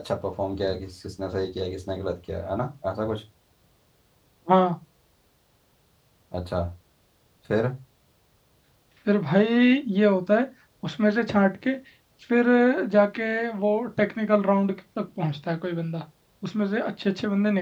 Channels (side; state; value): both; identical; correlation 1.00